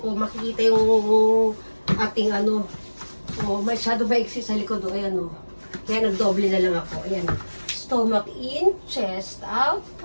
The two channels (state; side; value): inverted; both; correlation -1.00